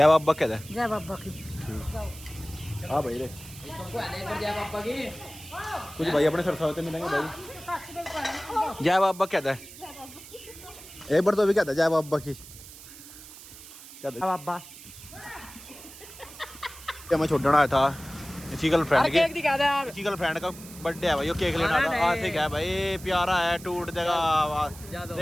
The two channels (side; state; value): right; noise; hiss, 17 dB below the sound